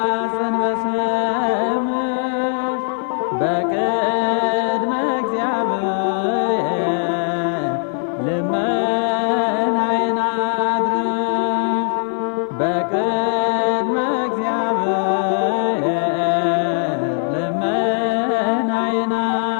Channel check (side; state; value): right; silent; digital silence